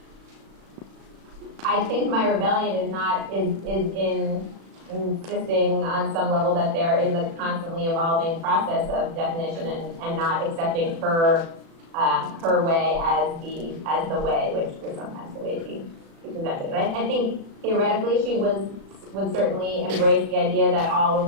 I think my rebellion is in insisting on some level that there is a constantly evolving process of definition and not accepting her way as the way, which was sometimes the way she presented it. I think theoretically she would certainly embrace the idea that all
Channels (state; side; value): late; left; 36 ms